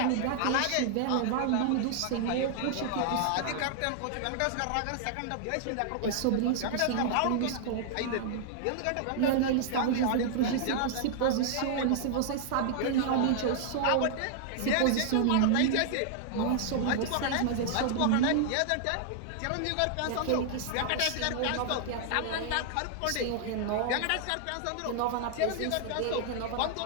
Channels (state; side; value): different; both; correlation -0.01